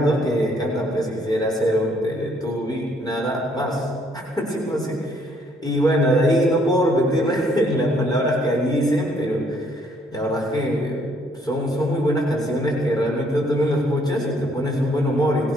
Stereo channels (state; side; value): normal; both; correlation 0.66